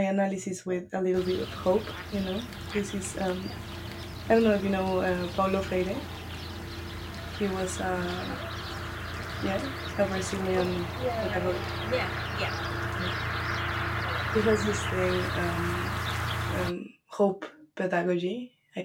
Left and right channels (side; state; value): both; identical; correlation 1.00